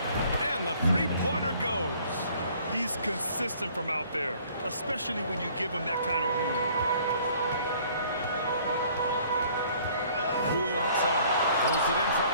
And the three-pointer goes. He's consistent from out there, especially when you give him that kind of room. Poole outside. Pulls it in from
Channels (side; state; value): both; inverted; correlation -0.56